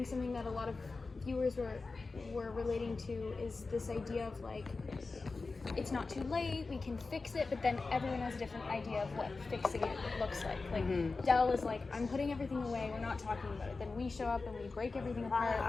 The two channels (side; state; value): right; quieter; 3.9 dB